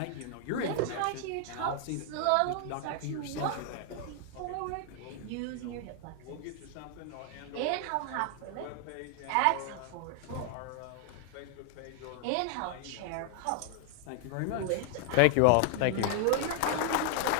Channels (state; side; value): different; both; correlation 0.00